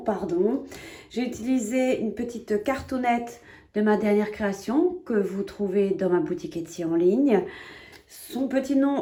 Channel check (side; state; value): both; identical; correlation 1.00